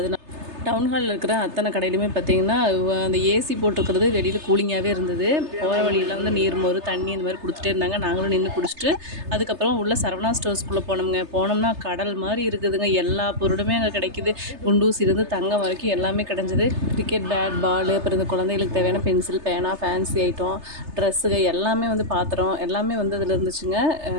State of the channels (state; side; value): late; left; 3.3 ms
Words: டவுன் ஹாலில் இருக்கிற அத்தனை கடையிலுமே பார்த்தீங்கன்னா அந்த ஏசி போட்டிருக்கிறது வெளியில் கூலிங்காகவே இருந்தது. போகிற வழியெல்லாம் வந்து நீர்மோர் தண்ணி இந்த மாதிரி கொடுத்துட்டே இருந்தாங்க. நாங்களும் நின்று குடிச்சிட்டு அதுக்கப்புறம் உள்ள சரவணா ஸ்டோர்ஸ்குள்ளே போனோம்னா கடல் மாதிரி இருக்குதுங்க. எல்லா பொருளுமே அங்கே கிடைக்கிது. குண்டூசிலிருந்து தங்கம் வரைக்கும் எல்லாமே கிடஞ்சிது. கிரிக்கெட் பேட் பால், அப்புறம் இந்த குழந்தைகளுக்கு தேவையான பென்சில் பேனா ஃபேன்சி ஐட்டம் ட்ரெஸ்ஸுங்க எல்லாமே வந்து பாத்திரம் எல்லாமே வந்து அதில் இருந்துச்சுங்க.